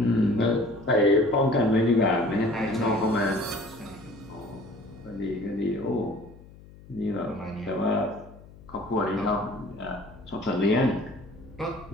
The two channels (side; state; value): left; noise; hum, 21 dB below the sound